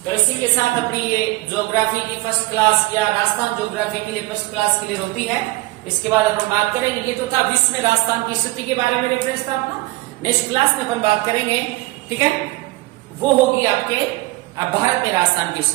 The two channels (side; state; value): left; quieter; 20.8 dB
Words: तो इसी के साथ अपनी ये ज्योग्राफी की फर्स्ट क्लास या राजस्थान ज्योग्राफी के लिए फर्स्ट क्लास क्लियर होती है। इसके बाद अपन बात करेंगे, ये तो था विश्व में राजस्थान की स्थिति के बारे में रेफरेंस था अपना। नेक्स्ट क्लास में अपन बात करेंगे, ठीक है, वो होगी आपके भारत में राजस्थान की